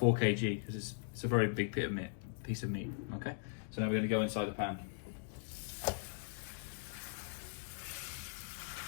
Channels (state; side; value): silent; right; digital silence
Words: kg because it's a very big piece of meat. Okay, so now we're going to go inside the pan.